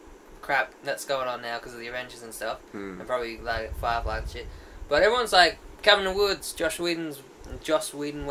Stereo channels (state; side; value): identical; both; correlation 1.00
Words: crap that's going on now because of the Avengers and stuff, Hmm. and probably like Firefly and shit. But everyone's like Cabin in the Woods, Joss Whedon,